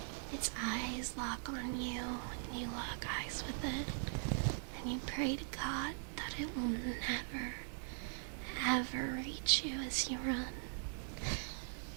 Its eyes lock on you, and you lock eyes with it, and you pray to God that it will never, ever reach you as you run.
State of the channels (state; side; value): silent; left; digital silence